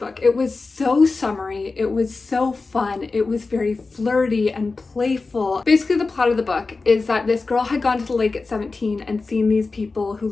It was so summery. It was so fun. It was very flirty and playful. Basically, the plot of the book is that this girl had gone to the lake at 17 and seen these people who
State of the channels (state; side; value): quieter; right; 3.9 dB